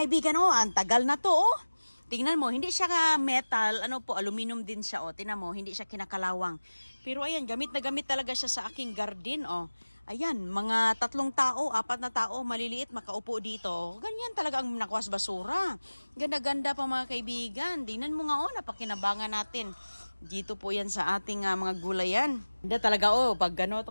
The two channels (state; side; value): inverted; both; correlation -1.00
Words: ang tagal na to, oh. Tingnan mo, hindi siya metal, aluminum din siya, oh. Tingnan mo, hindi siya kinakalawang. Pero ayan, gamit na gamit talaga siya sa aking garden, oh. Ayan, mga 3 tao, 4 na tao, maliliit, makaupo dito. Ganyan talaga ang nakuha sa basura. Ganda-ganda pa mga kaibigan. Tingnan mo nga, oh, napakinabangan natin. Dito po yan sa ating mga gulayan. Hindi talaga, pag gano'n